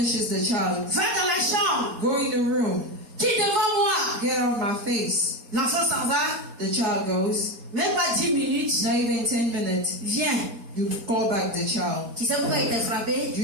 the child, va dans la chambre, go in the room, qui devant moi, get out of my face. l'enfant s'en va, The child goes, même pas 10 minutes, not even 10 minutes, viens. you call back the child. Tu sais pourquoi il t'a frappé? Do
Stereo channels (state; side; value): late; left; 4.3 ms